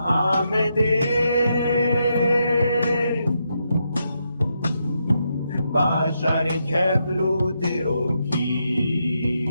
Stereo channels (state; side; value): inverted; both; correlation -0.81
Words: آمده باشار کبلو دیروکی